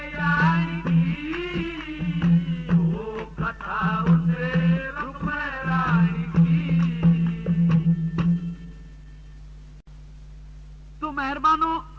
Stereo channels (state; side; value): identical; both; correlation 1.00